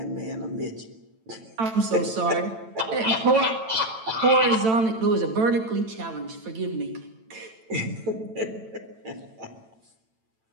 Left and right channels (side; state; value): left; late; 9.0 ms